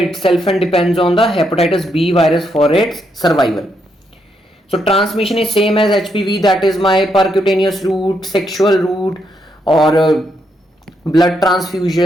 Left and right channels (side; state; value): both; normal; correlation 0.78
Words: itself and depends on the hepatitis B virus for its survival. So transmission is same as HPV, that is my percutaneous route, sexual route, or blood